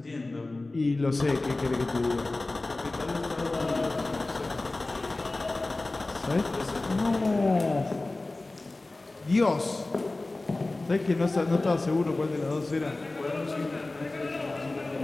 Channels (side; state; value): right; quieter; 3.0 dB